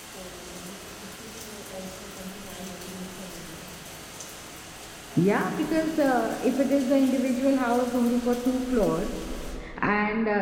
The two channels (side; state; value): both; identical; correlation 1.00